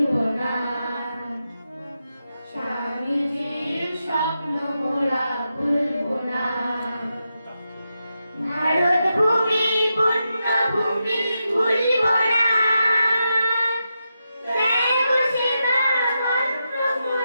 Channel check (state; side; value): inverted; both; correlation -0.87